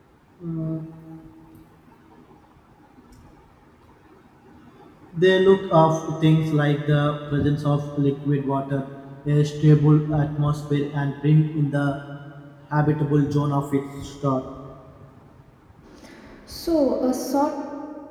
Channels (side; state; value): both; identical; correlation 1.00